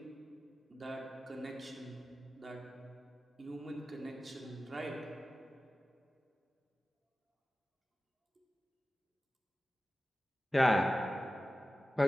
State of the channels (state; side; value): normal; both; correlation 0.95